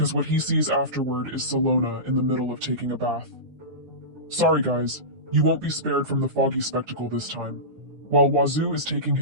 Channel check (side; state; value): left; late; 9.5 ms